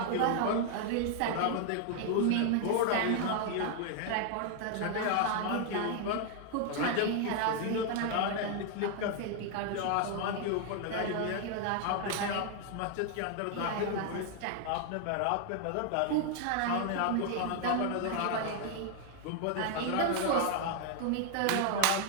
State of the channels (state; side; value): different; both; correlation 0.00